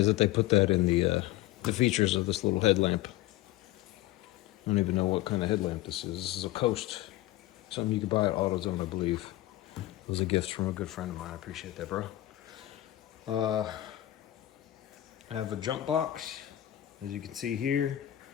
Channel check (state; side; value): quieter; right; 15.2 dB